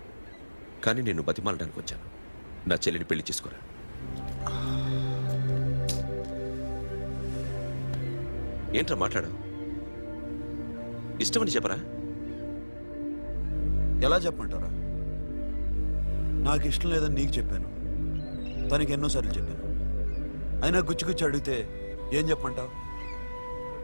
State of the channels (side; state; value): both; inverted; correlation -1.00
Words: కానీ నేను బతిమాలడానికి వచ్చాను. నా చెల్లిని పెళ్లి చేసుకోరా. ఏంట్రా మాట్లాడావు? ఇష్టమని చెప్పరా? ఎలా చెప్పమంటారా? నాకు ఇష్టం లేదని నీకు చెప్పాను, తనకి ఎన్నోసార్లు చెప్పాను. అయినా గుచ్చి గుచ్చి అడిగితే ఏం చెప్పమంటావు?